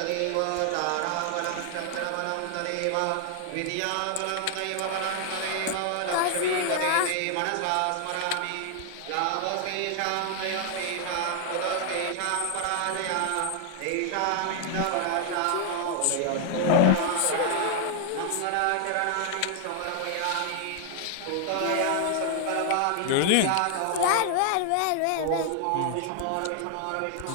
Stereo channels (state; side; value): different; both; correlation 0.00